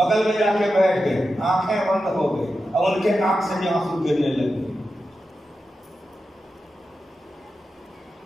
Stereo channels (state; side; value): normal; both; correlation 0.90